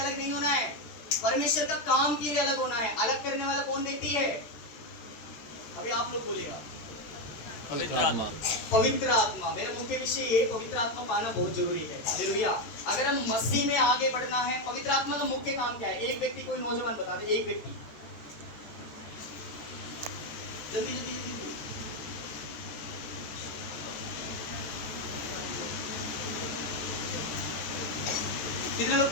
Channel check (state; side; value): late; right; 14 ms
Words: नहीं होना है, परमेश्वर का काम के लिए अलग होना है। अलग करने वाला कौन व्यक्ति है? अभी आप लोग बोलेगा, पवित्र आत्मा। पवित्र आत्मा। मेरा मुख्य विषय ये, पवित्र आत्मा पाना बहुत जरूरी है। हालेलुया। अगर हम मसीह में आगे बढ़ना है, पवित्र आत्मा का मुख्य काम क्या है? एक व्यक्ति, कोई नौजवान बता दे, एक व्यक्ति, जल्दी जल्दी जल्दी। कितने लोग